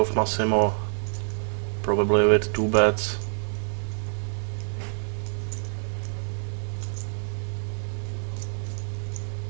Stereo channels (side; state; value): left; silent; digital silence